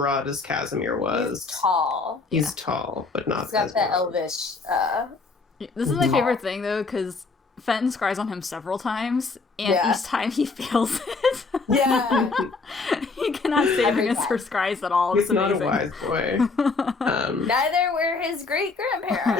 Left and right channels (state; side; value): quieter; right; 4.1 dB